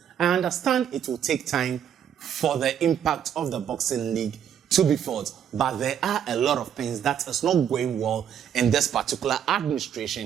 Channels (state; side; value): quieter; left; 9.1 dB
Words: I understand it will take time for the impact of the boxing league to be felt, but there are a lot of things that is not going well in this particular